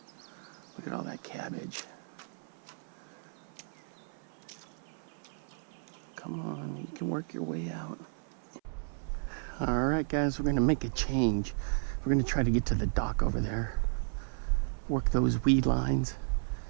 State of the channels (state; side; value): silent; left; 55 dB below the other